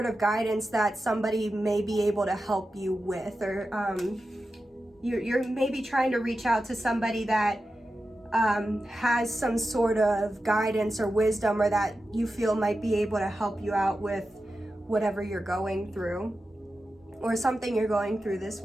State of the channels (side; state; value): both; normal; correlation 0.92